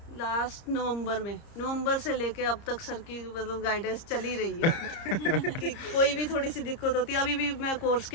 लास्ट नवंबर से लेके अब तक सर की मतलब गाइडेंस चल ही रही है कि कोई भी थोड़ी सी दिक्कत होती है। अभी भी मैं कोर्स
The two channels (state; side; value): late; right; 30 ms